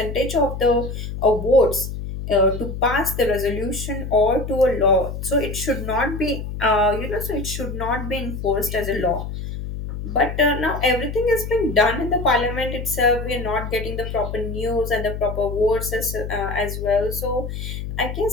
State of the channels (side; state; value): left; noise; hum, 6 dB below the sound